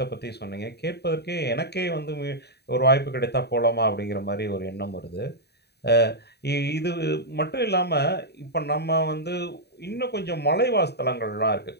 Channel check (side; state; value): right; late; 0.48 ms